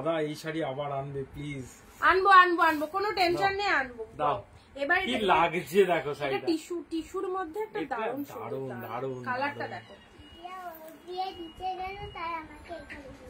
এই শাড়ি আবার আনবে প্লিজ। আনবো, কোনো টেনশন নেই, আনবো। দাও। এবার কি লাগছে দেখো শাড়িটা, এটা টিস্যুর মধ্যে একটা দারুণ কালারটা দেখো। দিয়ে দিতে গেল তাই আমাকে এখানে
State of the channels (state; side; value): identical; both; correlation 1.00